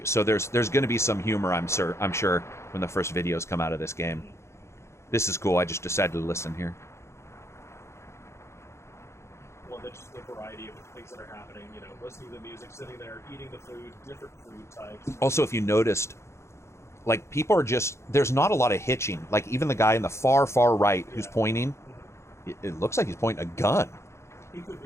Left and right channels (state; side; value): late; right; 0.13 ms